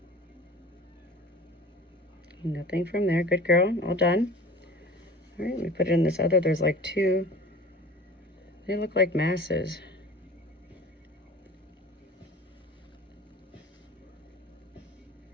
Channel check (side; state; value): both; normal; correlation 0.40